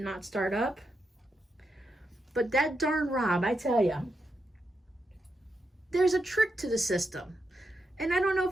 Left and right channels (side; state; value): both; normal; correlation 0.84